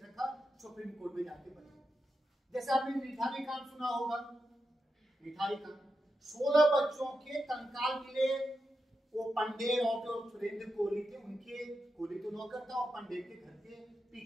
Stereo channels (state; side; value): normal; both; correlation 0.88